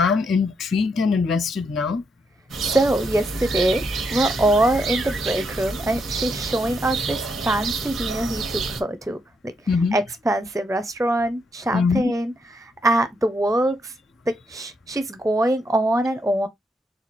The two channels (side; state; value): both; normal; correlation 0.78